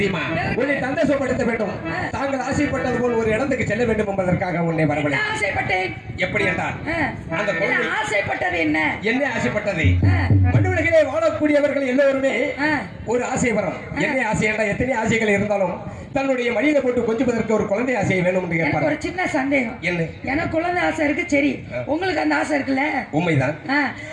உன்னை சந்தோஷப்படுத்த வேண்டும். தாங்கள் ஆசைப்பட்டது போல் ஒரு இடத்துக்கு செல்ல வேண்டும் என்பதற்காக உன்னை என்ன வரவழை ஆசைப்பட்டேன் எப்படி என்றால் அந்த என்ன குழந்தை ஆசைப்பட்டது என்ன என்ன ஆசைப்பட்டது ஆ, மண்ணுலகிலே வாழக்கூடியவர்கள் எல்லோருமே ஆ. ஒரு ஆசை வரும் என்ன ஆசை என்றால் எத்தனை ஆசைகள் இருந்தாலும் தன்னுடைய மடியில போட்டு கொஞ்சுவதற்கு ஒரு குழந்தை ஆசை வேணும் என்று எனக்கு கேட்பார் ஒரு சின்ன சந்தேகம் என்ன எனக்கு குழந்தை ஆசை இருக்கு சரி உங்களுக்கு அந்த ஆசை இருக்குல்ல உண்மைதான் ஆ,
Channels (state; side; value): identical; both; correlation 1.00